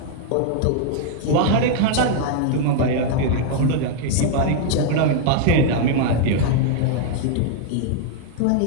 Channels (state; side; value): different; both; correlation -0.01